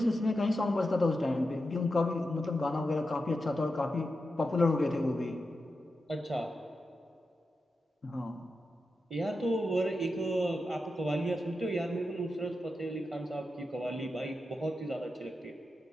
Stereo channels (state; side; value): normal; both; correlation 0.89